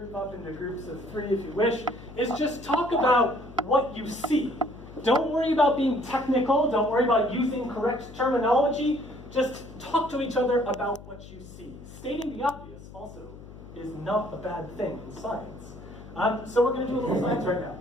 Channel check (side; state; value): left; noise; hum, 16 dB below the sound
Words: up into groups of 3 if you wish, is just talk about what you see. Don't worry about being technical. Don't worry about using correct terminology. Just talk to each other about what you see. Stating the obvious also is not a bad thing in science. So we're going to do a little science right now.